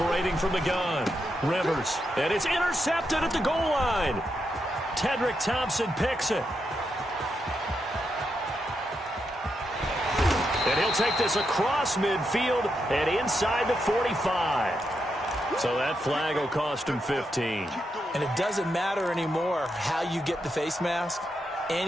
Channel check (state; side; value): normal; both; correlation 0.83